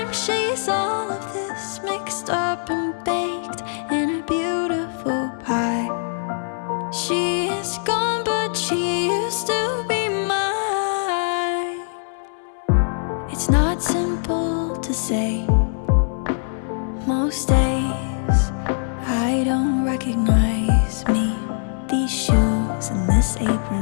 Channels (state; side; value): silent; right; 64 dB below the other